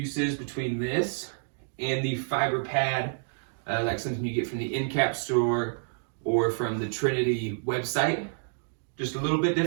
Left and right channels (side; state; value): left; silent; digital silence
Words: between this and the fiber pad, like something you get from the Endcap store or from the Trinity website. Just a little bit